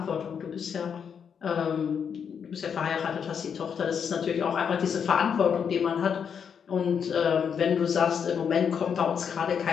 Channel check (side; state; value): right; quieter; 7.2 dB